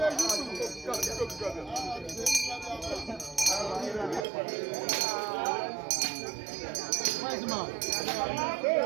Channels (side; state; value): left; drops out; at 4.2 s